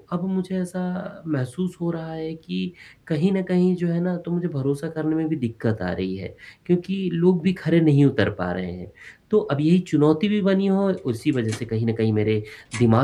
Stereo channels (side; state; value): both; identical; correlation 1.00